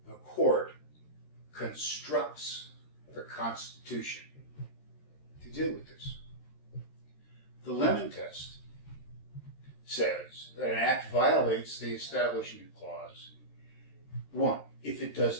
the court constructs the Constitution to deal with this. The Lemon Test says that an act violates the Establishment Clause, 1, if it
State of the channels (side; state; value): right; late; 13 ms